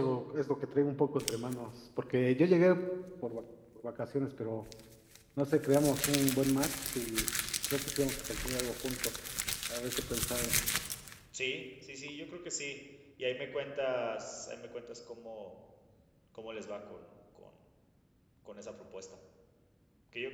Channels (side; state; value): both; identical; correlation 1.00